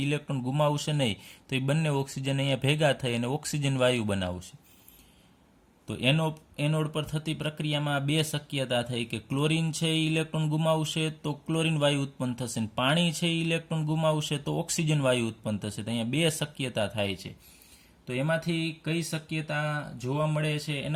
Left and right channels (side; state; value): both; identical; correlation 1.00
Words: ઇલેક્ટ્રોન ગુમાવશે નહીં, તો એ બંને ઓક્સિજન અહીંયા ભેગા થઈ અને ઓક્સિજન વાયુ બનાવશે. તો એનોડ પર થતી પ્રક્રિયામાં બે શક્યતા થઈ કે ક્લોરીન છે એ ઇલેક્ટ્રોન ગુમાવશે તો ક્લોરીન વાયુ ઉત્પન્ન થશે, અને પાણી છે એ ઇલેક્ટ્રોન ગુમાવશે તો ઓક્સિજન વાયુ ઉત્પન્ન થશે. તો અહીંયા બે શક્યતા થાય છે. તો એમાંથી કઈ શક્યતા જોવા મળે છે